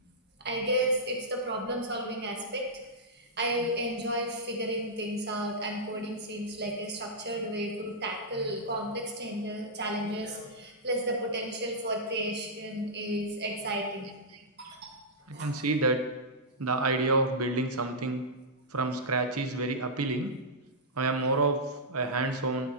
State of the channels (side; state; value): both; normal; correlation -0.11